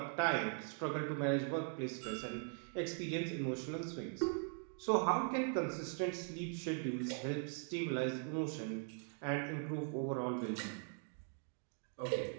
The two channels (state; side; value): silent; left; 50 dB below the other